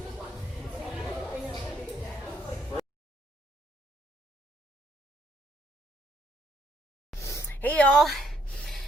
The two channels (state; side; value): normal; both; correlation 0.69